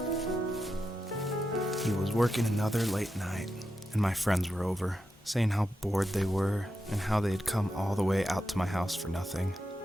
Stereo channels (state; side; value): normal; both; correlation 0.88